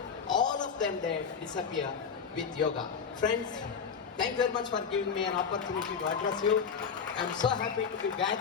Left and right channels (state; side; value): quieter; right; 6.4 dB